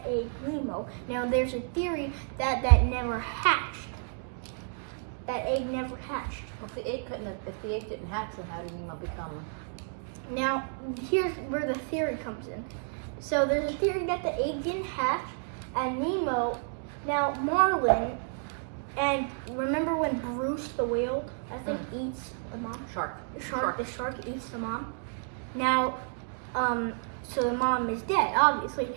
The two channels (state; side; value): silent; left; 57 dB below the other